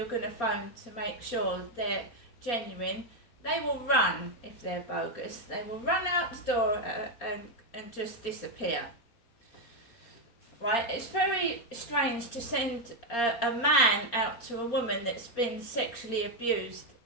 going to phone to make sure they're genuine, they will run. If they're bogus, they will run out the door and just disappear. Right? It's very strange to send a man out to a woman that's been sexually abused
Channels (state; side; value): late; right; 4.3 ms